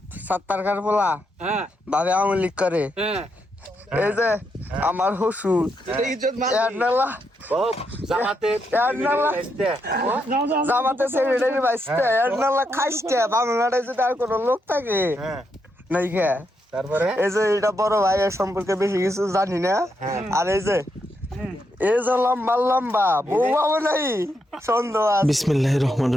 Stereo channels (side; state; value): both; normal; correlation 0.81